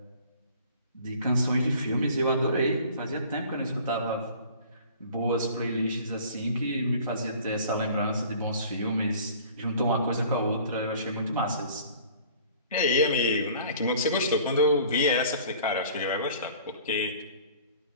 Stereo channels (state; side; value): inverted; both; correlation -0.49